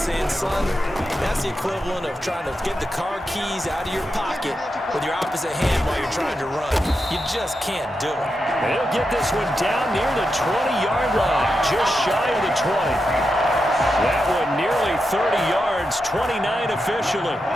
son, that's the equivalent of trying to get the car keys out of your pocket with your opposite hand while you're trying to run. You just can't do it. They'll get this one down near the 20-yard line, just shy of the 20. That one nearly 30 yards, 29 officially.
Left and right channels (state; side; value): normal; both; correlation 0.87